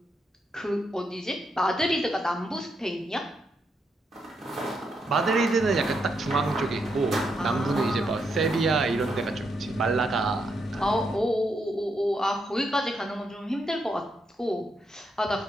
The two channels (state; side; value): normal; both; correlation 0.80